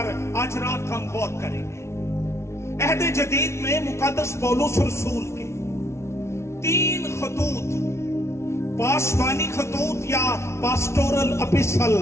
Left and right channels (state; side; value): late; right; 0.13 ms